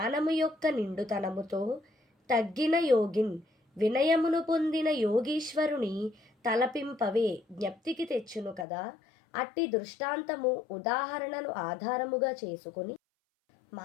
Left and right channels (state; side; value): drops out; right; at 8.7 s